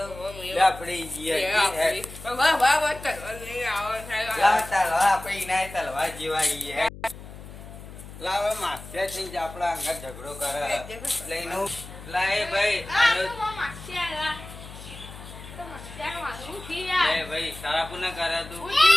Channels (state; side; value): noise; left; hum, 14 dB below the sound